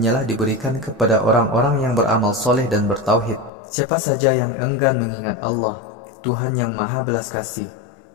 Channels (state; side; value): drops out; right; at 3.5 s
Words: diberikan kepada orang-orang yang beramal soleh dan bertauhid. Siapa saja yang enggan mengingat Allah, Tuhan yang Maha Belas Kasih,